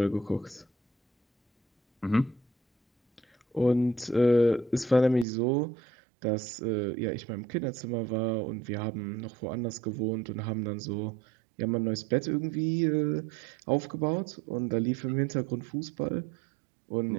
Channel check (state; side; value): drops out; left; at 5.2 s